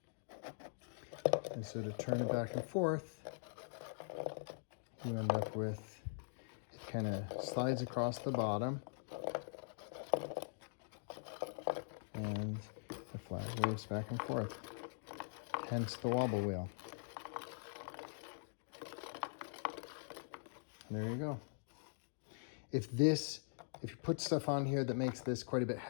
And so to turn it back and forth, you end up with, it kind of slides across the bottom, and the flag waves back and forth. Hence the wobble wheel. There you go. If you put stuff on here that makes this quite a bit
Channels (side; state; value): right; silent; digital silence